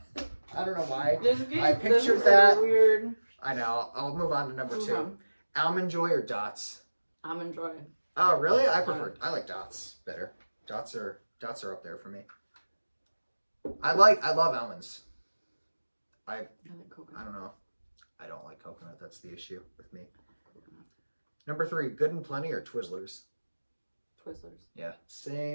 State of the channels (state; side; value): inverted; both; correlation -1.00